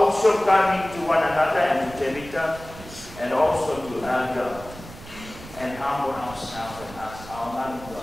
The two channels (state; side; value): noise; right; rumble, 16 dB below the sound